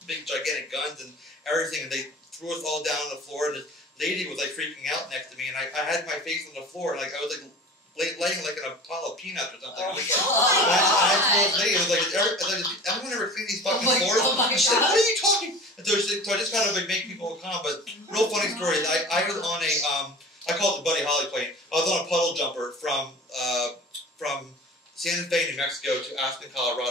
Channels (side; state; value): both; normal; correlation 0.39